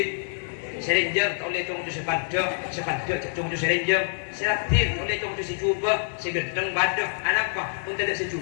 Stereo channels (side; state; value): right; silent; 61 dB below the other